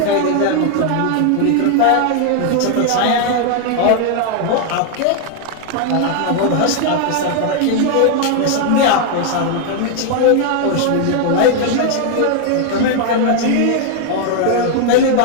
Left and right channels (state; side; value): different; both; correlation 0.00